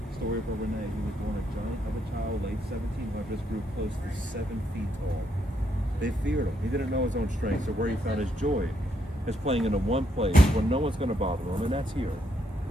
Story of Renee, who was born a giant of a child, late 1700s, grew close to 7 feet tall. They feared him. He didn't know his own strength, so where he found his joy is playing in the one place where no one's going to bother him, and that's here.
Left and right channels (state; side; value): normal; both; correlation 0.76